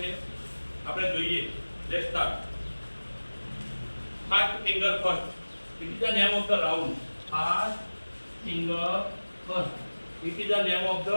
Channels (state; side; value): inverted; both; correlation -1.00